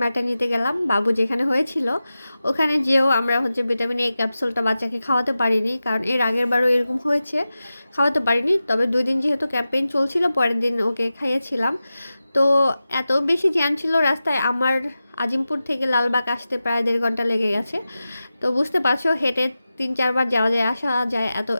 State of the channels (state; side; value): inverted; both; correlation -0.94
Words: নিতে গেলাম বাবু যেখানে হয়েছিল। ওখানে যেও আমরা হচ্ছে ভিটামিন এ ক্যাপসুলটা বাচ্চাকে খাওয়াতে পারিনি, কারণ এর আগের বারও এরকম হয়েছে, খাওয়াতে পারিনি। তবে 2 দিন যেহেতু ক্যাম্পেইন চলছিল, পরের দিন ওকে খাইয়েছিলাম। তো এত বেশি জ্যাম ছিল রাস্তায়, আমার আজিমপুর থেকে লালবাগ আসতে প্রায় 1.5 ঘন্টা লেগে গেছে। তো বুঝতে পারছো, হেঁটে 3-4 বার যাওয়া যায়, আসা যায়